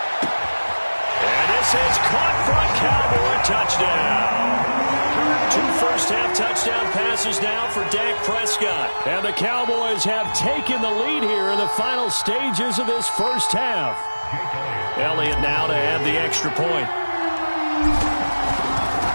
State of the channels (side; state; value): both; inverted; correlation -1.00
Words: And this is caught for a Cowboy touchdown. 2 first-half touchdown passes now for Dak Prescott. And the Cowboys have taken the lead here in the final stages of this first half. Elliott now to add the extra point.